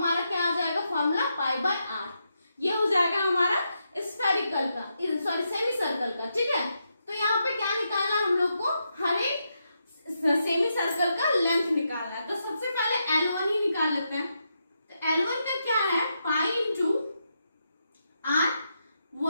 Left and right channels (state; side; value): inverted; both; correlation -0.83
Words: क्या आ जाएगा फॉर्मूला π/r, ये हो जाएगा हमारा स्फेरिकल का, सॉरी सेमी सर्कल का, ठीक है। तो यहाँ पे क्या निकालना है हम लोग को, हर एक सेमी सर्कल का लेंथ निकालना है। तो सबसे पहले L1 ही निकाल लेते हैं। तो L1 का क्या है पाई इंटू